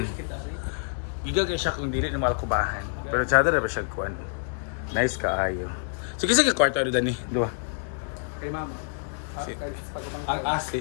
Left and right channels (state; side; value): silent; right; digital silence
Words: Iga kayo siya kung dili na malkubahan. Pero tsada na ba siya kuan? Nice kaayo. So kisa ka kwarto ano dani? Dua. Kay ma'am. Ang